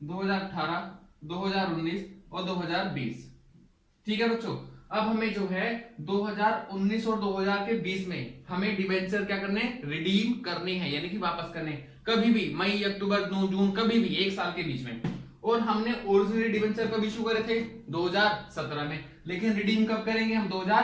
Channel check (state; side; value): identical; both; correlation 1.00